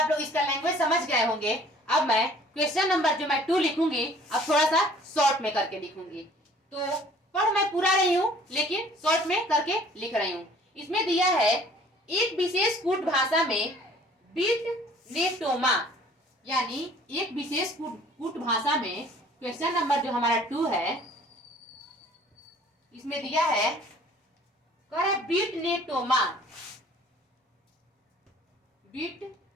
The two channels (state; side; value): normal; both; correlation 0.53